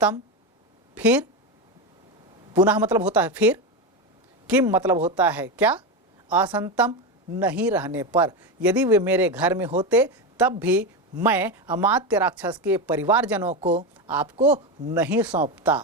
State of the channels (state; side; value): normal; both; correlation 0.15